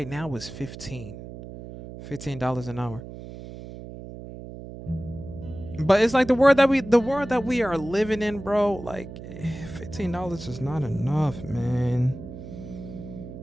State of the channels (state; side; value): noise; right; hum, 12 dB below the sound